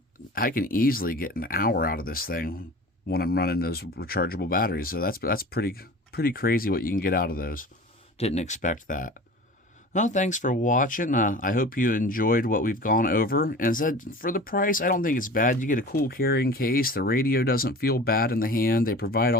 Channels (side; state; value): both; normal; correlation 0.38